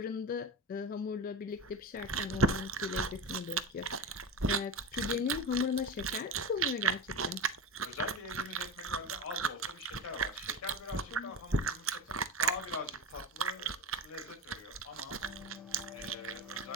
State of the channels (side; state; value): both; normal; correlation 0.24